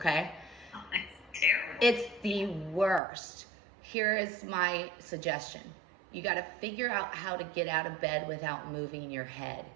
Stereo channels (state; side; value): drops out; left; at 3.0 s